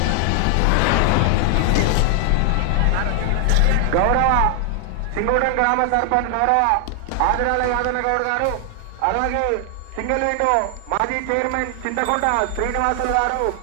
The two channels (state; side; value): different; both; correlation 0.00